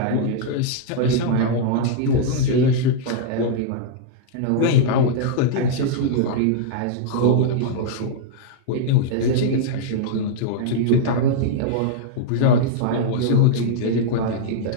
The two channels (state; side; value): different; both; correlation -0.01